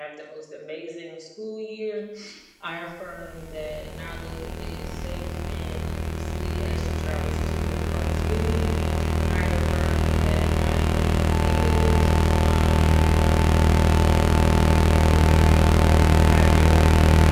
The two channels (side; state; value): both; identical; correlation 1.00